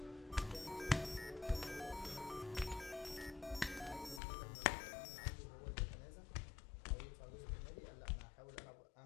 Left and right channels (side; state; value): right; drops out; at 4.2 s